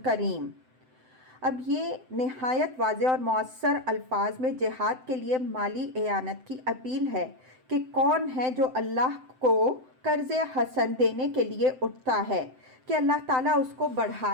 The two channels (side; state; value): left; late; 7.8 ms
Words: کریم۔ اب یہ نہایت واضح اور مؤثر الفاظ میں جہاد کے لیے مالی اعانت کی اپیل ہے کہ کون ہے جو اللہ کو قرض حسن دینے کے لیے اٹھتا ہے کہ اللہ تعالیٰ اس کو